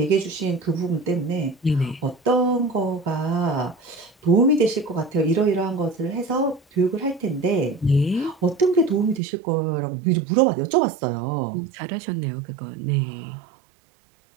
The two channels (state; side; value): drops out; left; at 9.2 s